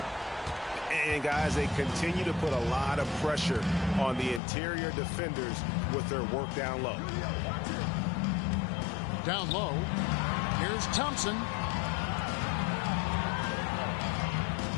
And guys, they continue to put a lot of pressure on the interior defenders with their work down low. Down low. Here's Thompson.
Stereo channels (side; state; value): right; drops out; at 4.4 s